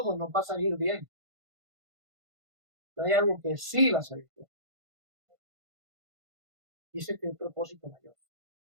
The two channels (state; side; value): late; left; 1.5 ms